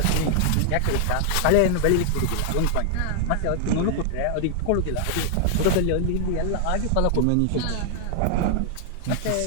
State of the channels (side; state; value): both; different; correlation -0.01